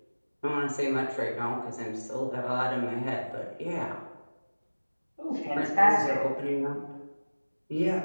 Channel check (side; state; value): both; inverted; correlation -1.00